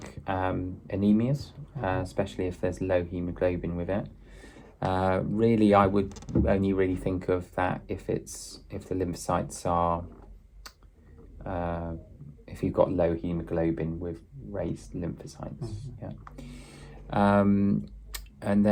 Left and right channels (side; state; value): both; identical; correlation 1.00